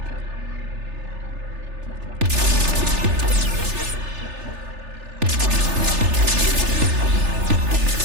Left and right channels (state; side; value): late; left; 3.4 ms